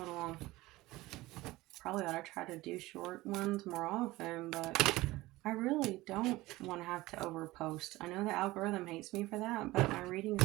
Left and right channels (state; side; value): quieter; left; 18.9 dB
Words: little long. Probably ought to try to do short ones more often, but I really don't want to have to overpost. I know the algorithm hates me for that, but my readings